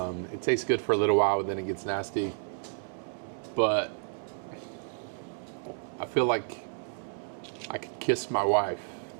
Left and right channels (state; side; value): silent; left; digital silence